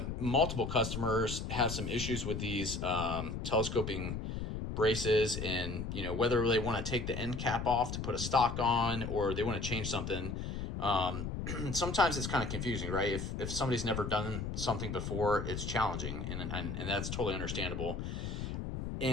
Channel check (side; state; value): left; noise; rumble, 4 dB below the sound